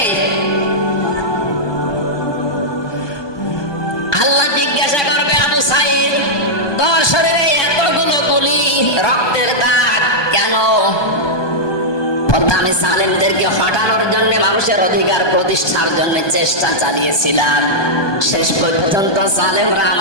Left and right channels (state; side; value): late; right; 1.2 ms